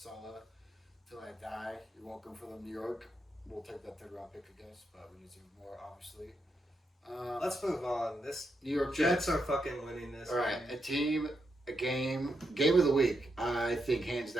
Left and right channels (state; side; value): normal; both; correlation 0.83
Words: till I die. You're welcome for them, New York. We'll take that 3rd round pick, I guess, but we deserve more, obviously. Let's move on. This New York Jets Jets are fucking winning this. All right, a team, a game of the week. I think hands